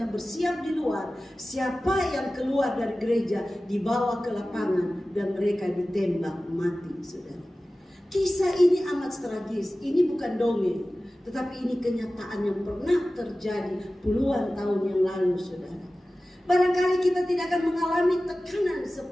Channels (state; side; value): normal; both; correlation 0.96